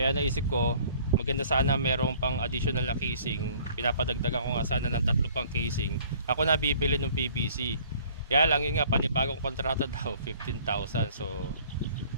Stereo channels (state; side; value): inverted; both; correlation -0.55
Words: naisip ko maganda sana merong pang additional na casing. Pinapadagdagan ko nga sana ng 3 pang casing. Ako na bibili ng PVC. Kaya lang yun nga, panibagong kontrata daw, 15,000. So,